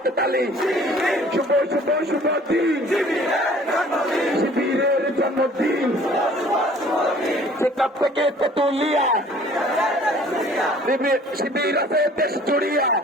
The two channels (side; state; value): both; normal; correlation 0.53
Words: তালি, শুভ শুভ শুভ দিন, শিবিরের জন্মদিন। সেখান থেকে তেতুলিয়া, শিবির আছে দেশ জুড়িয়া।